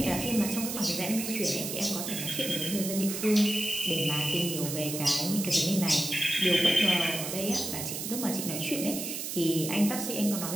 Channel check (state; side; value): noise; right; hiss, 5 dB below the sound